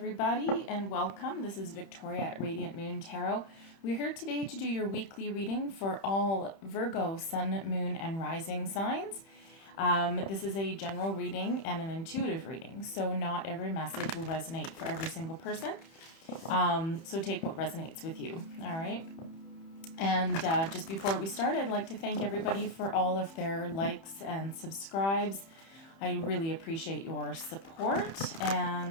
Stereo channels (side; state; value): right; late; 30 ms